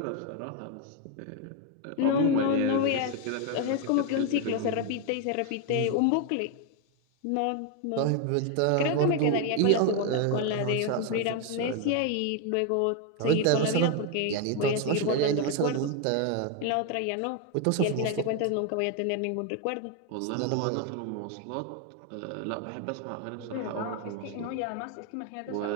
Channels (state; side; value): different; both; correlation 0.01